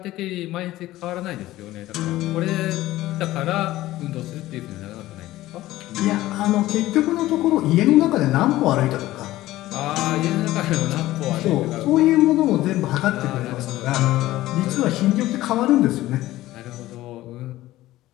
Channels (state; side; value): quieter; right; 16.1 dB